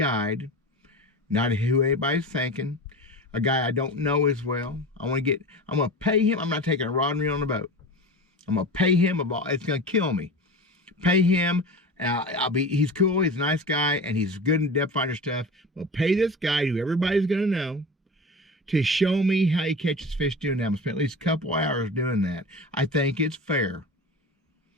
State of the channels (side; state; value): both; normal; correlation 0.31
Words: not who anybody's thinking, a guy I don't know as well. I'm going to pay him. I'm not taking a rod and reel on the boat. I'm going to pay him it's going to kill me. Pay him. He's cool, he's a nice guy, and he's good in depth finder stuff. We'll pay this guy who everybody's going to know to show me how he catches fish doing that. I'm going to spend at least a couple hours doing that. I think it's fair.